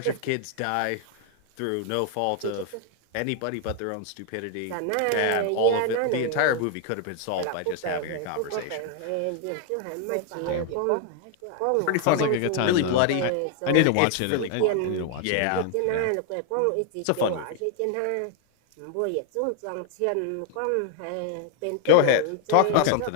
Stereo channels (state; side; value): different; both; correlation 0.00